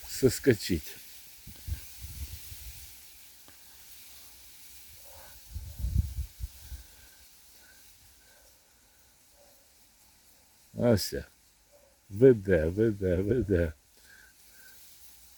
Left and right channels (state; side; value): identical; both; correlation 1.00